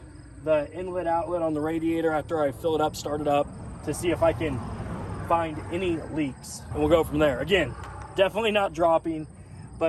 the inlet outlet on the radiator after I fill it up, start it up, to see if I can find any leaks, and we'll go from there. Again, definitely not dropping,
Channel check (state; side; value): identical; both; correlation 1.00